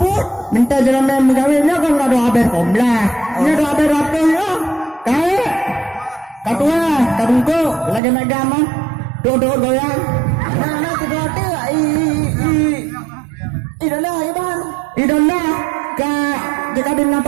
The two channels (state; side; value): drops out; left; at 8.0 s